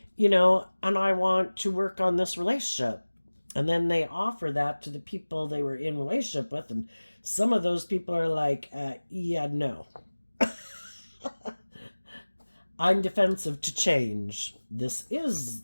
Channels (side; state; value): both; inverted; correlation -1.00